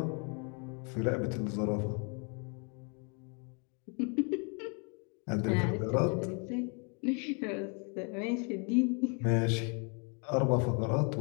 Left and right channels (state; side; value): quieter; right; 36.4 dB